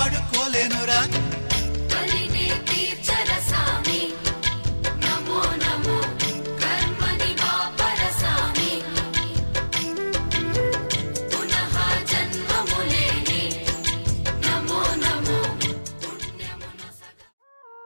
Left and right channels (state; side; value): inverted; both; correlation -1.00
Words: కలిని తీర్చర సామి నమో నమో కర్మని వాపర సామి పునః జన్మములేని నమో నమో పుణ్యమును సదా